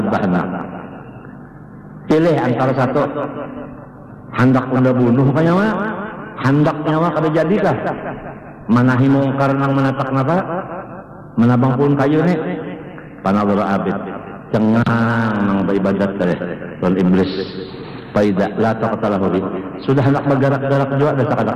Pilih antara satu. Hendak anda bunuh kaya mah, hendak nyawa kada jadikah? Manahi mungkar nang menatak napa? Menabang pun kayu ni. Panadara abid, cengang nang beribadat tadi, tuan iblis. Faida la taqtalahu bi. Sudah hendak bergerak-gerak juga, dah kada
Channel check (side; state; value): both; identical; correlation 1.00